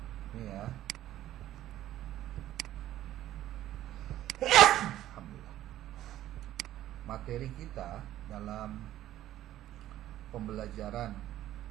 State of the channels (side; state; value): left; quieter; 13.3 dB